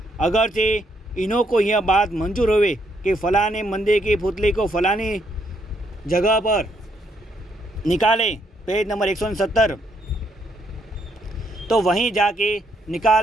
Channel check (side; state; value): both; normal; correlation 0.74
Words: अगरचे इन्हों को यह बात मंजूर होवे कि फ़लाने मंदिर की पुतली को फ़लानी जगह पर निकाले, पेज नंबर 170, तो वहीं जाके